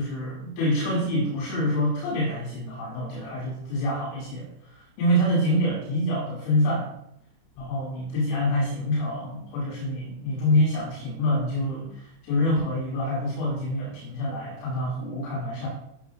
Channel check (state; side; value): late; right; 31 ms